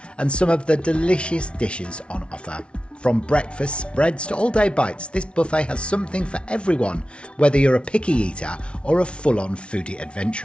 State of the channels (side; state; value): right; late; 0.059 ms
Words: and some of the delicious dishes on offer. From breakfast spreads to all-day bites, this buffet has something for everyone, whether you're a picky eater or a full-on foodie